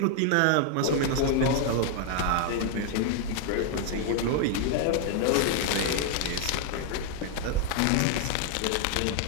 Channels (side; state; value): both; different; correlation 0.00